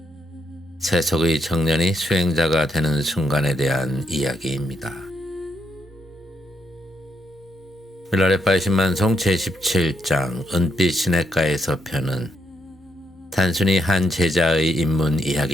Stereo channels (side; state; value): both; normal; correlation 0.78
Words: 세속의 청년이 수행자가 되는 순간에 대한 이야기입니다. 밀라레빠의 신만송 제17장 은빛 시냇가에서 편은 단순히 한 제자의 입문